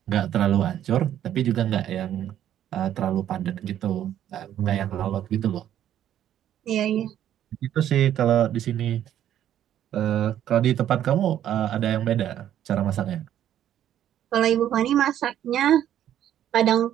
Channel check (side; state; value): left; quieter; 11.1 dB